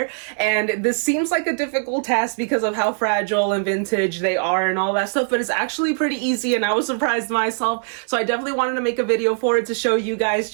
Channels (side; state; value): left; silent; digital silence